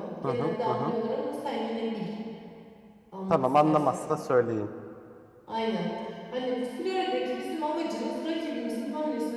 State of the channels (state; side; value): identical; both; correlation 1.00